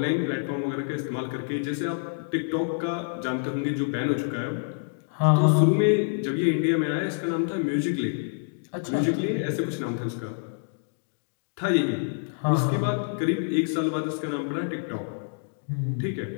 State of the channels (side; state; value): right; silent; digital silence